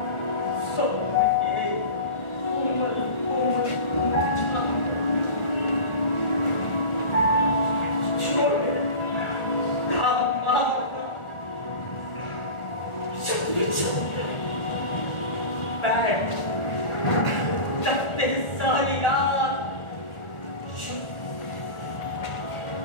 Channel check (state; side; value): late; right; 1.4 ms